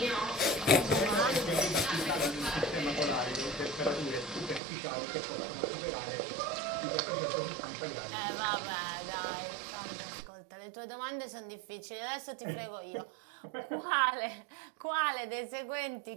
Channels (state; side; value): drops out; left; at 4.6 s